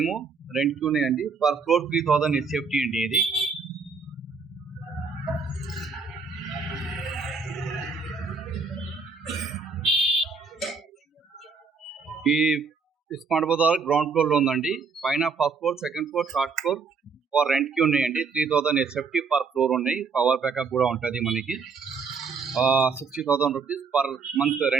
రెంట్కి ఉన్నాయండి. పర్ ఫ్లోర్ 3000 హెచ్ఎఫ్టీ అండి. ఇది ఈ స్మార్ట్ బజార్ గ్రౌండ్ ఫ్లోర్లో ఉందండి. పైన first floor, second floor, third floor for రెంట్కి ఉన్నాయండి. 3000 హెచ్ఎఫ్టీ పర్ ఫ్లోర్ ఉన్నాయి. పవర్ బ్యాకప్ కూడా ఉంటుంది మనకి. 60,000 రూపీస్ పర్ మంత్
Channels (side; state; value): left; quieter; 5.0 dB